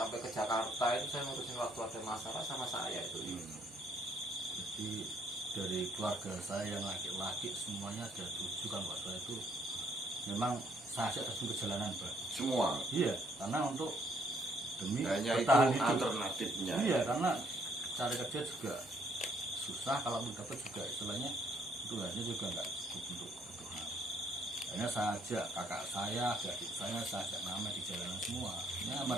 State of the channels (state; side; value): normal; both; correlation 0.67